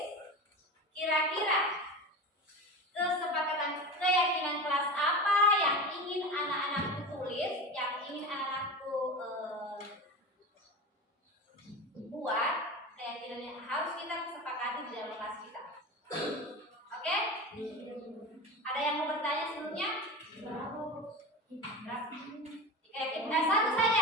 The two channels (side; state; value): both; normal; correlation 0.27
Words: kira-kira kesepakatan keyakinan kelas apa yang ingin anak-anakku tulis, yang ingin anak-anakku buat, keyakinan yang harus kita kesepakati di dalam kelas kita. Oke? Ada yang mau bertanya sebelumnya? Satu